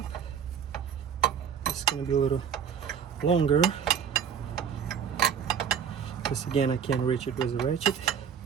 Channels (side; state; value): left; quieter; 7.7 dB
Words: This is gonna be a little longer because again I can't reach it with a ratchet